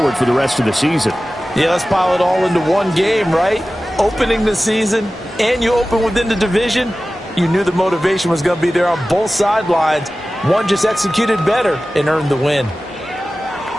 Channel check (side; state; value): both; normal; correlation 0.96